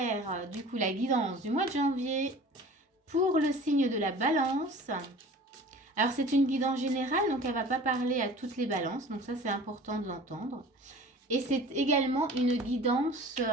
du coup la guidance du mois de janvier pour le signe de la balance. Alors c'est une guidance générale, donc elle ne va pas parler à toutes les balances, donc ça c'est important de l'entendre. Et c'est également une guidance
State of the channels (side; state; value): both; normal; correlation 0.43